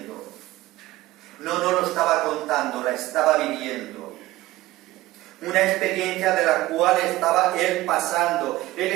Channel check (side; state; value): left; quieter; 17.3 dB